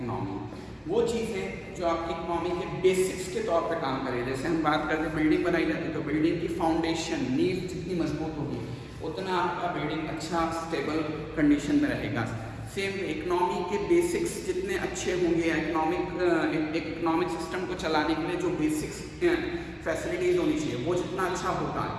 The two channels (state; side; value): identical; both; correlation 1.00